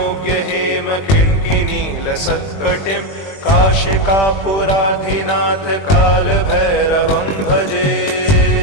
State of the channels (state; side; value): late; right; 20 ms